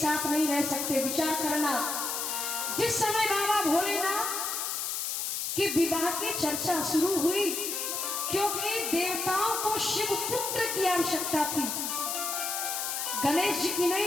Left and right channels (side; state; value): left; noise; hiss, 2 dB below the sound